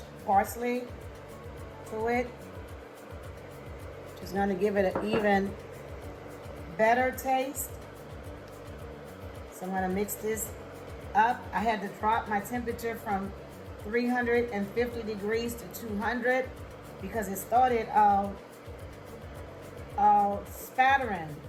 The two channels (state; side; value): identical; both; correlation 1.00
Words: parsley to it. Just going to give it an even better taste. So I'm going to mix this up. I had to drop my temperature from 350 degrees to 200 because it started spattering.